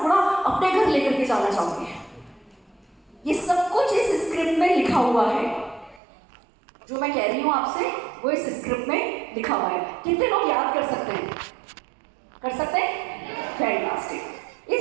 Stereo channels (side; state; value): left; drops out; at 6.0 s